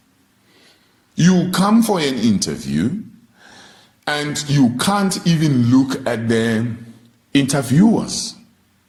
You come for an interview and you can't even look at the interviewers.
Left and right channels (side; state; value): both; identical; correlation 1.00